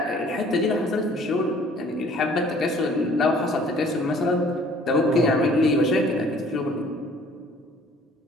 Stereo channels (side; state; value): both; normal; correlation 0.55